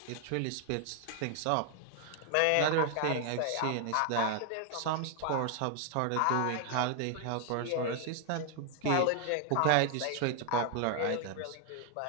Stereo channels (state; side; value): different; both; correlation 0.00